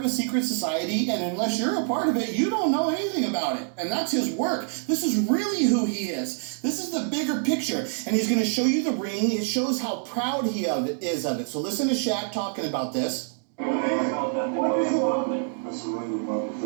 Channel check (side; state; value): left; silent; 61 dB below the other